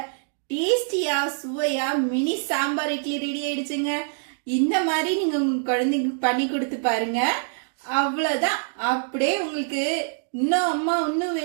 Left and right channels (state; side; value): silent; left; digital silence